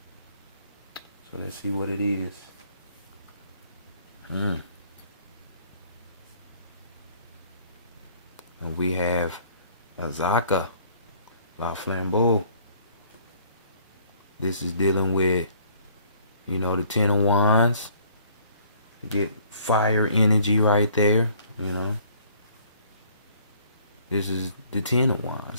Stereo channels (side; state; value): both; inverted; correlation -0.59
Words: So let's see what it is. And we have Azaka, La Flambeau. This is dealing with, you know, the Ten of Wands. You get fire energy right there, you know. This is the Ten of